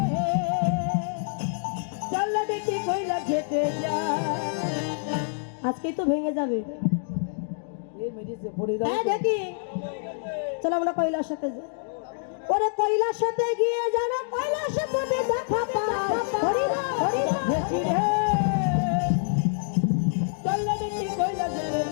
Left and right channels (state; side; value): silent; right; digital silence